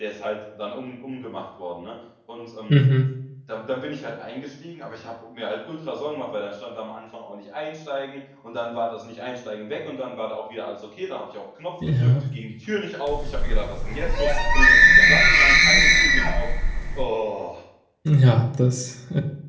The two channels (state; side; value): identical; both; correlation 1.00